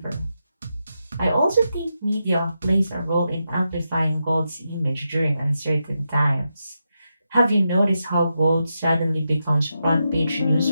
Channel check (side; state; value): both; inverted; correlation -0.86